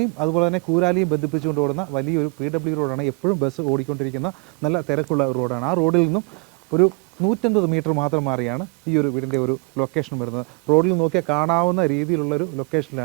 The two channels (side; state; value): left; quieter; 31.3 dB